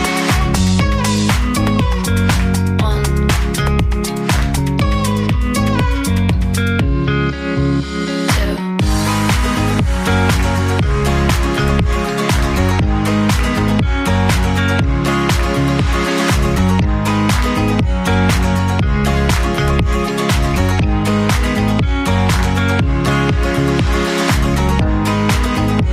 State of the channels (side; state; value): both; identical; correlation 1.00